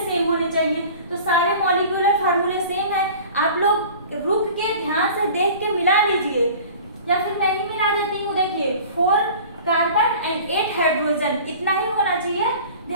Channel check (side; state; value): both; inverted; correlation -0.42